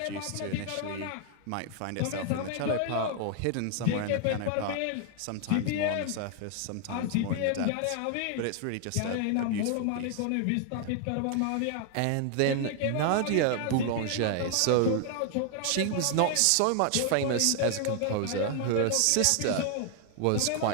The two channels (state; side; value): different; both; correlation 0.00